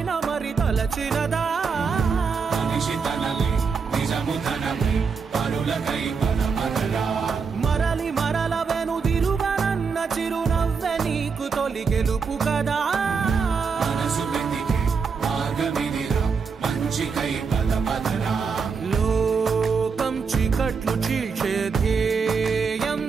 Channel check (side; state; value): left; quieter; 5.5 dB